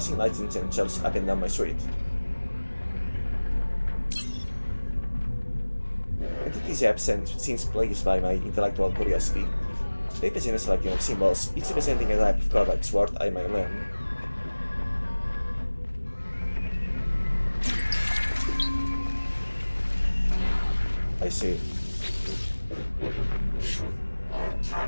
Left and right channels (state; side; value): inverted; both; correlation -1.00